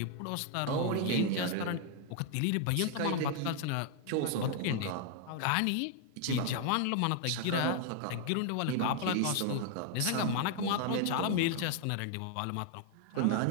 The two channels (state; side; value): different; both; correlation 0.00